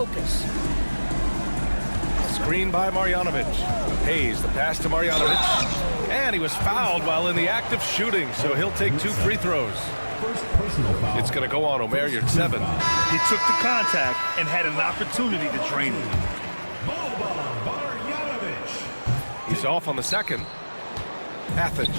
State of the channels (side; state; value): both; inverted; correlation -1.00